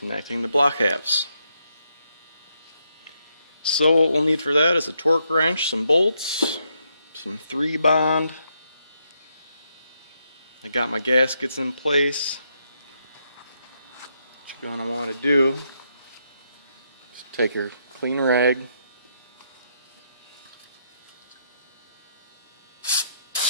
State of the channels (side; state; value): both; inverted; correlation -0.78